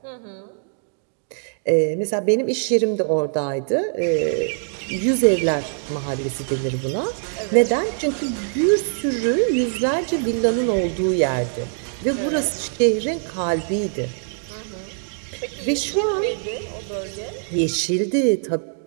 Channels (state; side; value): silent; left; digital silence